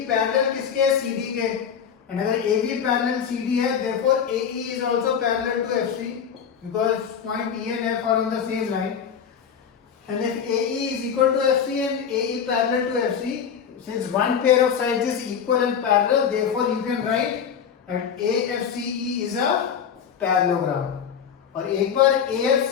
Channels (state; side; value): quieter; right; 7.6 dB